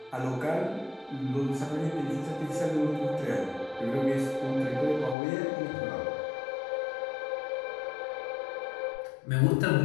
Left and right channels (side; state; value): right; drops out; at 5.2 s